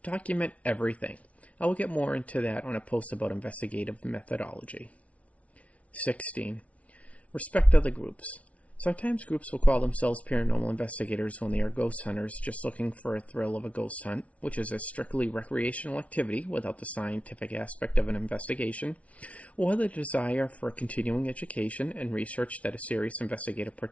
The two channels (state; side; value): late; right; 0.065 ms